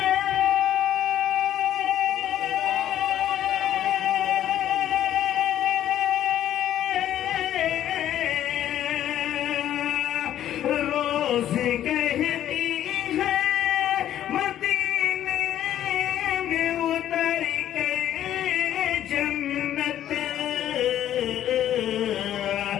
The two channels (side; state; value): right; quieter; 11.5 dB